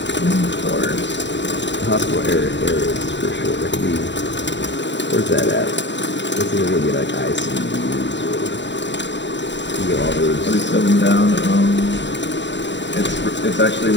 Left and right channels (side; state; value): right; late; 0.52 ms